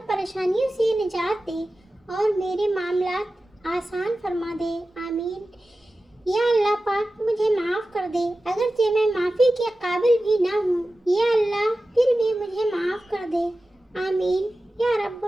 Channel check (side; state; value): both; normal; correlation 0.95